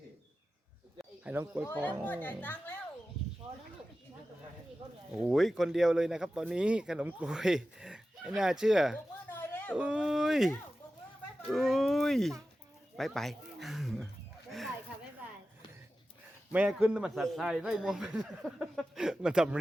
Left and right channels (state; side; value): normal; both; correlation 0.94